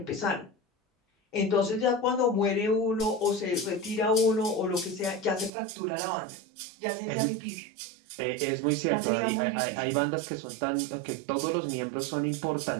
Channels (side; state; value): left; drops out; at 5.5 s